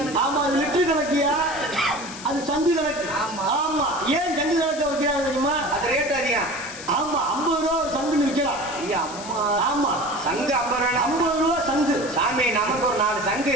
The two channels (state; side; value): noise; left; hiss, 13 dB below the sound